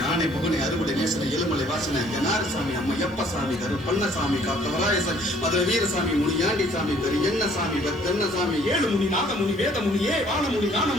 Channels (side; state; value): both; normal; correlation 0.59